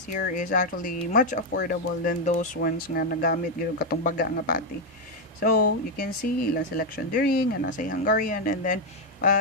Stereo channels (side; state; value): both; normal; correlation 0.02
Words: here is actually much affordable than those ones nga nagamit gyud katong baga nga patty. So you can see ilang selection diri nga nasa Hungarian. And then